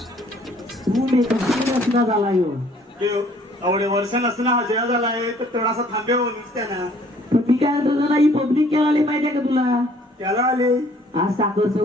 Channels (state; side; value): normal; both; correlation 0.58